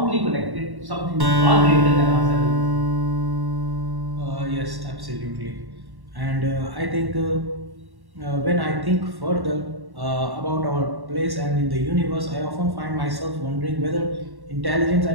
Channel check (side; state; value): left; late; 1.1 ms